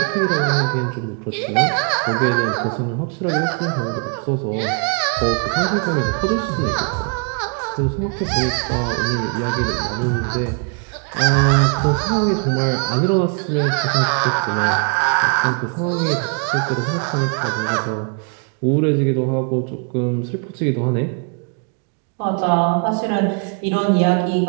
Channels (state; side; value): quieter; left; 39.4 dB